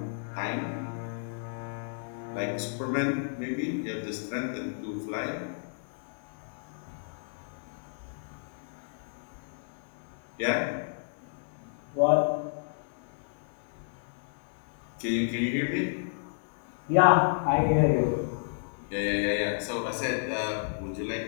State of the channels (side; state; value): right; silent; digital silence